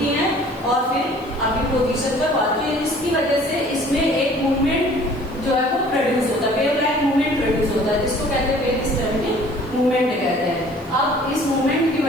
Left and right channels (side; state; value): right; noise; hiss, 27 dB below the sound